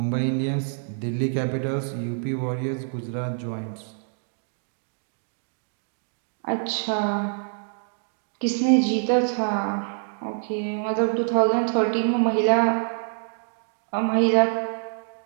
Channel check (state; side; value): silent; left; digital silence